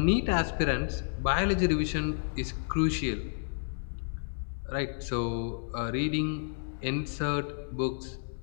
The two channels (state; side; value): silent; right; digital silence